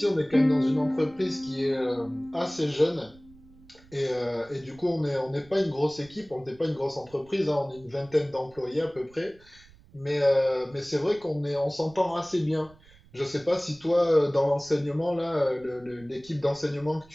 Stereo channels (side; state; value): right; noise; rumble, 26 dB below the sound